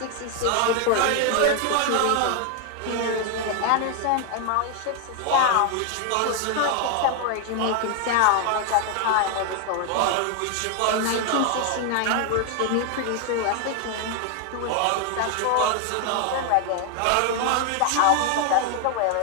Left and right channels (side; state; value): both; different; correlation 0.00